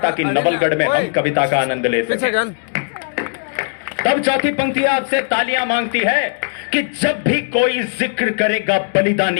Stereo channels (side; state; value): right; silent; digital silence